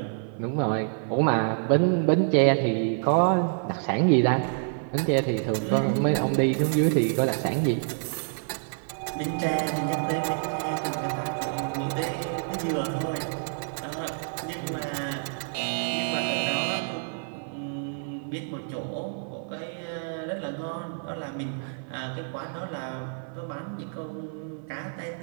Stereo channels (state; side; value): silent; left; 55 dB below the other